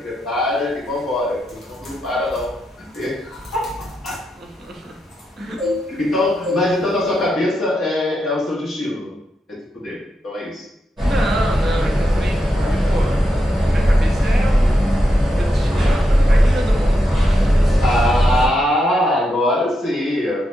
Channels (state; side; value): normal; both; correlation 0.84